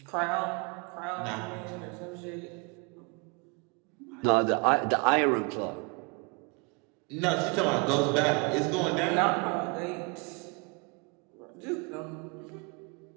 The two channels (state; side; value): quieter; left; 32.1 dB